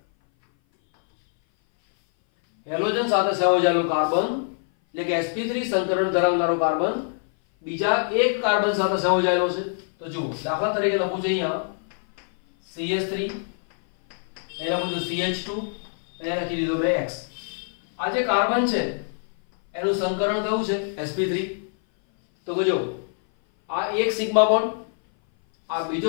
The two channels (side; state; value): right; silent; 58 dB below the other